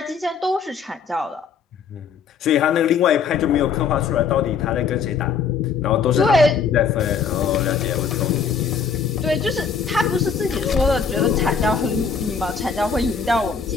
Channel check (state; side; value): quieter; right; 6.0 dB